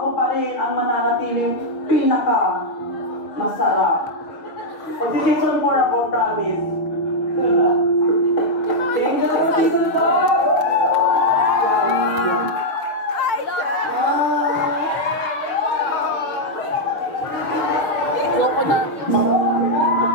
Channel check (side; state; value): right; late; 6.5 ms